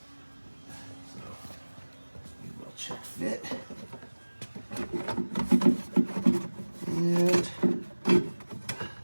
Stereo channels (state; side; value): inverted; both; correlation -1.00